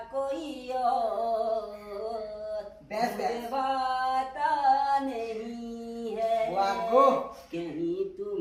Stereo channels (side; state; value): both; identical; correlation 1.00